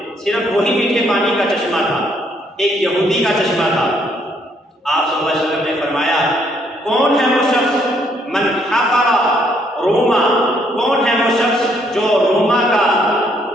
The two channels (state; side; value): normal; both; correlation 0.69